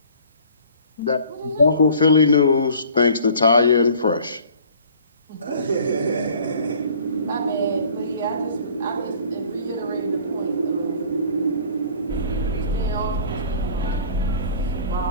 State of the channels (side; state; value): both; inverted; correlation -0.51